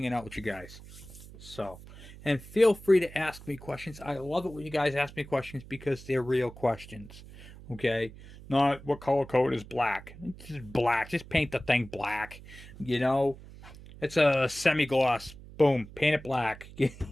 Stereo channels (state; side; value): noise; right; hum, 17 dB below the sound